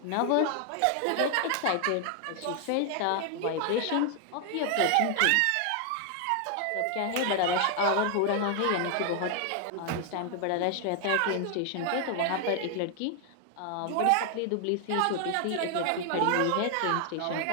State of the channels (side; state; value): both; different; correlation 0.00